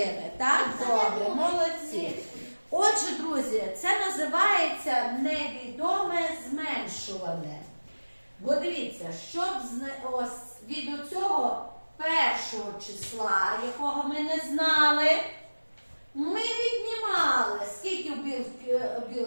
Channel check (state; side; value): inverted; both; correlation -1.00